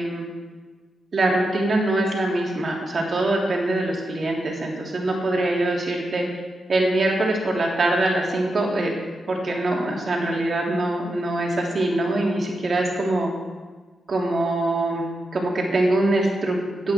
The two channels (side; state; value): both; normal; correlation 0.87